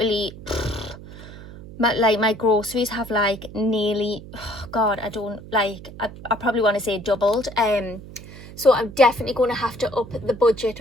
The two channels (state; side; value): noise; right; hum, 15 dB below the sound